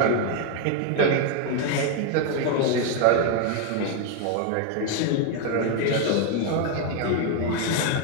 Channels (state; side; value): different; both; correlation 0.01